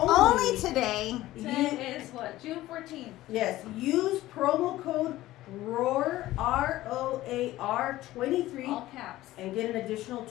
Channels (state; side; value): quieter; right; 16.1 dB